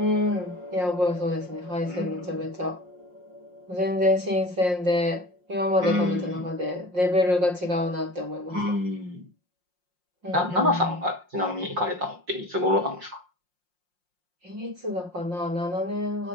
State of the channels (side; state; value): left; late; 5.6 ms